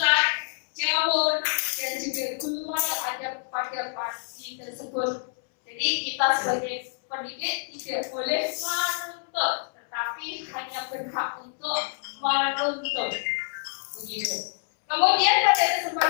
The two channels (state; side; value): silent; right; 60 dB below the other